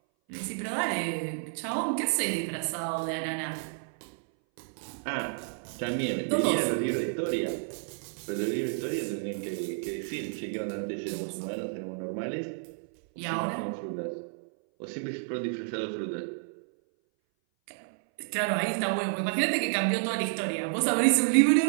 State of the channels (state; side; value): silent; left; 58 dB below the other